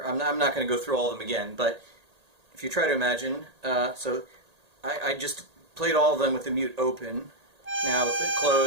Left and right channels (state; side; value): late; left; 1.8 ms